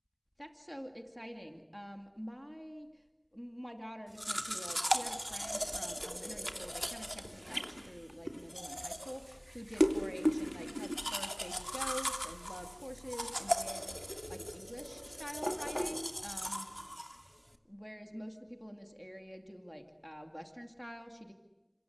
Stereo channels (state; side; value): identical; both; correlation 1.00